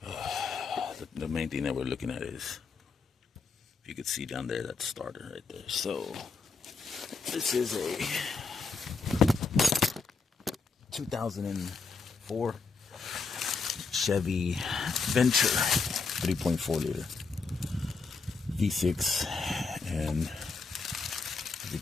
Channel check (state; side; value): quieter; right; 4.6 dB